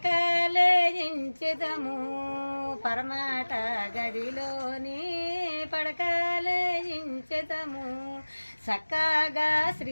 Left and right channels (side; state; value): both; inverted; correlation -1.00